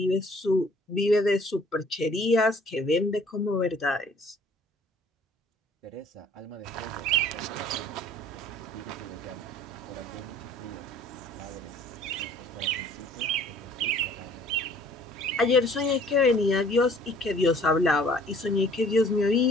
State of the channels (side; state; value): both; normal; correlation 0.54